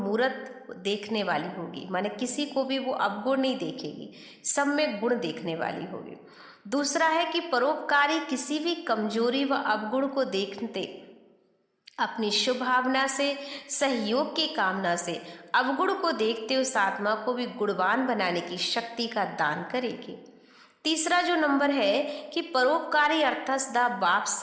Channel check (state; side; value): identical; both; correlation 1.00